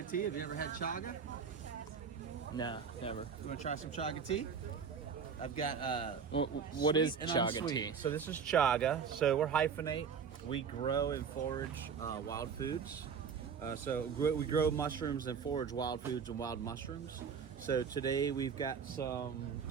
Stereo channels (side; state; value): left; quieter; 6.5 dB